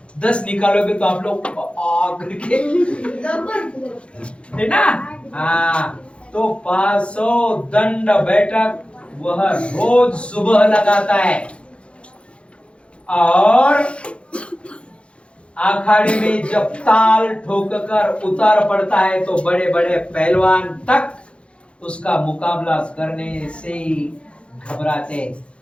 10 निकालोगे तो आप लोग करके, है ना। तो 500 दंड बैठक वह रोज सुबह लगाता है। और अखाड़े में जब ताल ठोककर उतार पड़ता है तो बड़े बड़े पहलवान तक उसका मुकाबला करने से घबराते।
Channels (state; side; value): late; right; 0.059 ms